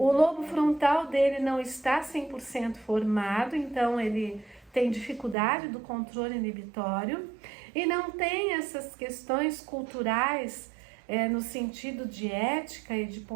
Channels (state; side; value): drops out; left; at 5.4 s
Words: lobo frontal dele não está 100% formado, então ele tem dificuldade do controle inibitório e não tem essas questões culturais no sentido de ética e de